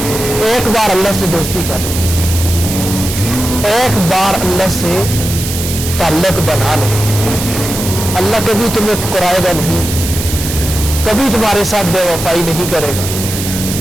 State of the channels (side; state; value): right; noise; hiss, 6 dB below the sound